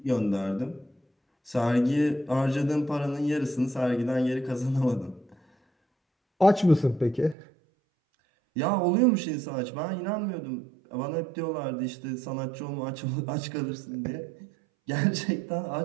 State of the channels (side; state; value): left; drops out; at 7.4 s